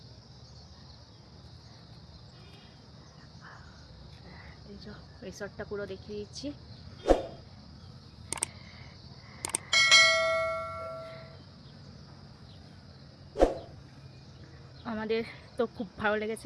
এই যে রিসর্টটা পুরো দেখিয়ে দিচ্ছি। আমাদের তো খুব ভালো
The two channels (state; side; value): identical; both; correlation 1.00